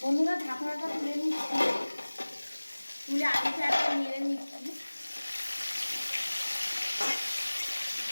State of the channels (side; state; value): both; inverted; correlation -1.00